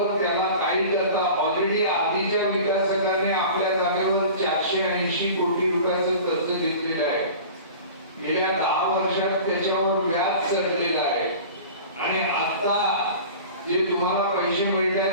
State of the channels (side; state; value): both; inverted; correlation -0.39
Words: त्याला काही करता ऑलरेडी आधीच्या विकासकाने आपल्या जागेवर 480 कोटी रुपयाचं कर्ज घेतलेलं आहे. गेल्या 10 वर्षात त्याच्यावर व्याज चढलेलं आहे आणि आता जे तुम्हाला पैसे